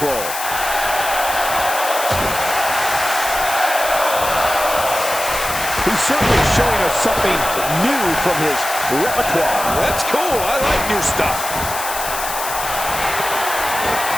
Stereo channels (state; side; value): noise; left; hiss, 6 dB below the sound